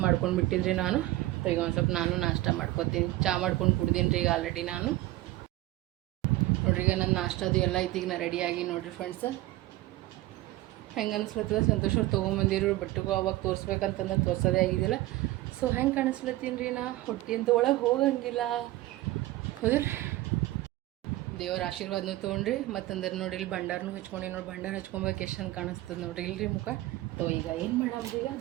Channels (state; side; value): quieter; left; 17.1 dB